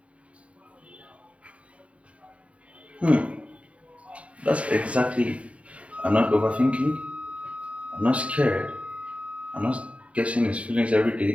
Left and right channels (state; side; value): late; left; 0.064 ms